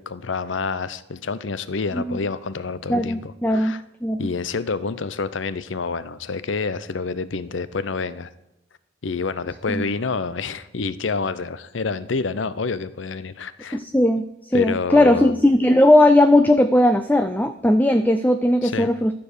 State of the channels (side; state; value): both; normal; correlation 0.73